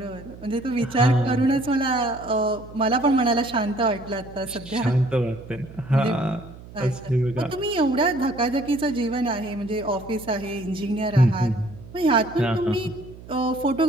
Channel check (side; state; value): right; noise; hum, 17 dB below the sound